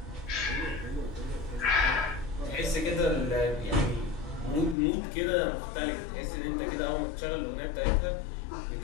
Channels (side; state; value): right; drops out; at 4.8 s